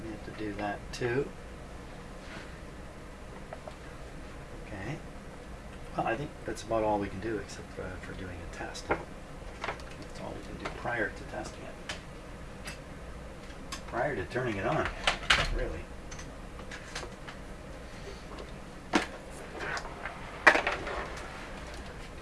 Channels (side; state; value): both; identical; correlation 1.00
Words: we have to do that too. Okay. Well, I think that's about all we can do except for doing a test. That's all we can do prior to testing it. Prior to turning it on, really.